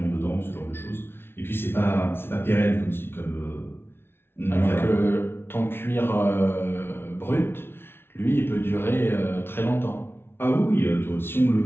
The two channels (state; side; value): late; right; 0.11 ms